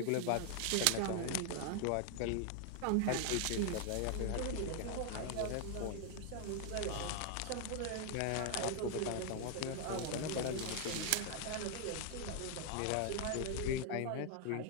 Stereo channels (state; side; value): different; both; correlation 0.00